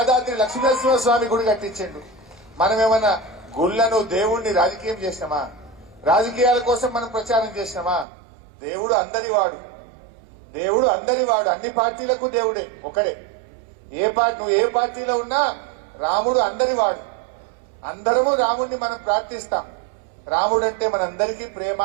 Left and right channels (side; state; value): left; drops out; at 8.1 s